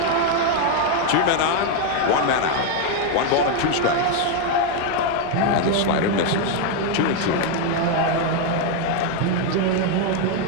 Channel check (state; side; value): different; both; correlation 0.01